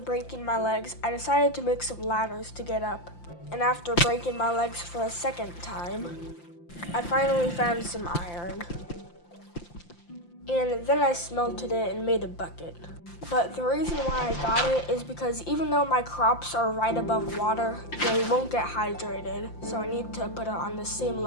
my legs, I decided to make some ladders to get up. And after breaking my legs for a second time, I finally found some iron. And then I smelted it and made a bucket. But the reason why I got it is because even though my crops are right above water, they won't get hydrated, so I need to put it on the same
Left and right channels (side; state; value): right; late; 5.8 ms